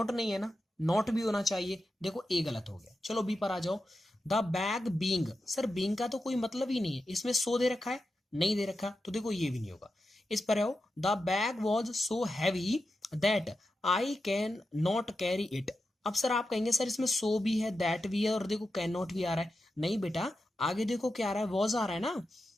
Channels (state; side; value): normal; both; correlation 0.90